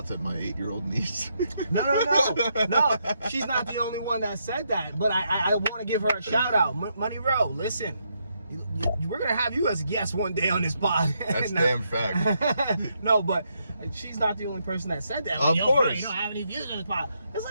at my 8-year-old niece? No. She's not the only one that said that, but I want to give her a shout out. Money Row, listen, we're gonna have you as a guest one day on this pod. That's damn fact. No, but she's not the only person that said that. Of course. Bro, you don't have any views on this pod. It's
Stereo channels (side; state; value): both; inverted; correlation -0.78